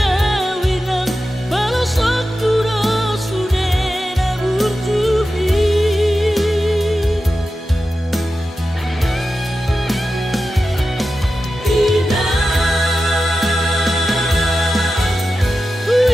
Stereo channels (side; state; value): both; normal; correlation 0.92